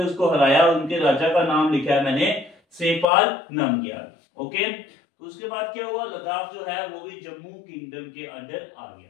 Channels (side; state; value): right; drops out; at 3.1 s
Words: उसको हराया, उनके राजा का नाम लिखा है मैंने सेपाल नामग्याल, ओके। तो उसके बाद क्या हुआ, लद्दाख जो है वो भी जम्मू किंगडम के अंडर आ